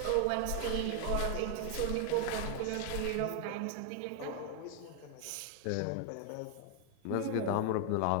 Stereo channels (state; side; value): different; both; correlation 0.00